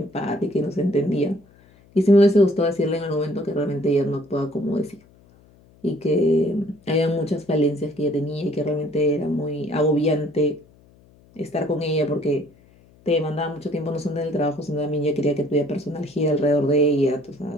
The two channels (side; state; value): left; noise; hum, 28 dB below the sound